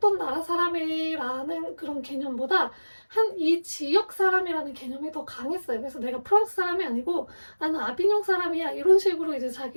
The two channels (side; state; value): both; inverted; correlation -1.00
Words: 나라 사람이라는 그런 개념보다 한 이 지역 사람이라는 개념이 더 강했어요. 그래서 내가 프랑스 사람이 아니고 나는 아비뇽 사람이야, 이런 식으로 이제